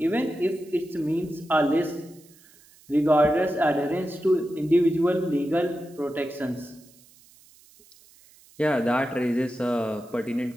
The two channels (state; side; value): noise; right; hiss, 27 dB below the sound